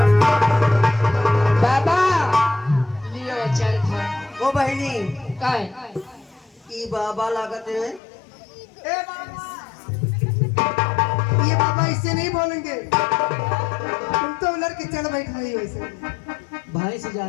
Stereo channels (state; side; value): drops out; right; at 8.0 s